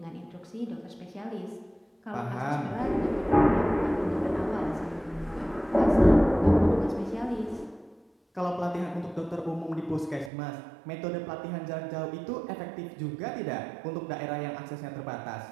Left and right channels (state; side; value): drops out; left; at 10.3 s